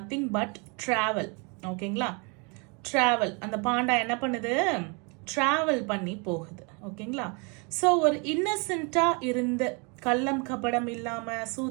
but travel. ஓகேங்களா, travel. அந்த பாண்டா என்ன பண்ணுது? travel பண்ணி போகுது. ஓகேங்களா, ஸோ ஒரு இன்னசென்ட்டாக இருந்த, கள்ளம் கபடம் இல்லாமல்,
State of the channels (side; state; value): left; quieter; 32.6 dB